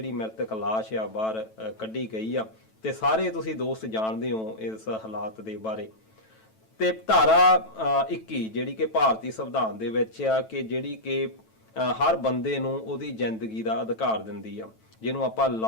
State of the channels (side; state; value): right; late; 9.1 ms